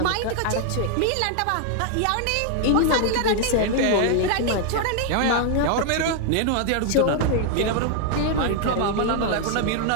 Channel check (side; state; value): both; different; correlation 0.00